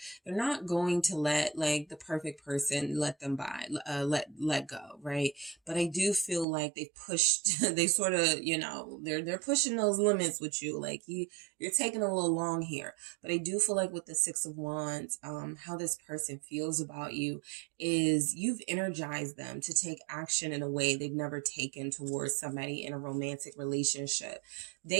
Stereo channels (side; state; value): left; drops out; at 6.5 s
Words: They're not going to let like the perfect person let them by, let go, right? But I do feel like they pushed, they sort of, you know, they're pushing those limits with you. Like you're taking a little long here. But I do feel like with the Six of Wands, how this person feels about you is you've energized them to take action in a way they've never taken towards somebody in a romantic relationship.